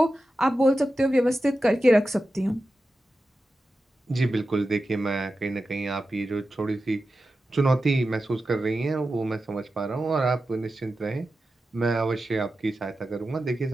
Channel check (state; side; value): normal; both; correlation 0.92